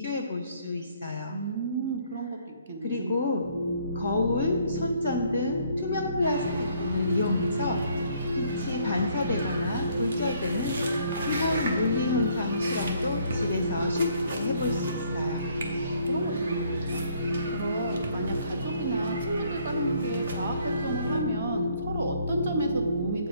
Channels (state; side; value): inverted; both; correlation -0.64